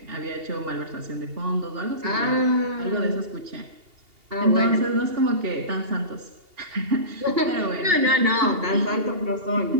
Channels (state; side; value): late; left; 2.8 ms